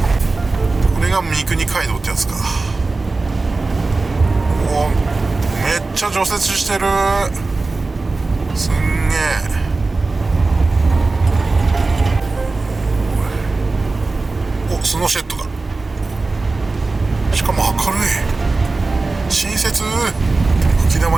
れが三国街道ってやつか。おお、めっちゃ除雪してる。すんげえ。お、スノーシェッドだ。しかも明るい、親切。吹き溜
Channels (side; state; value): left; quieter; 3.6 dB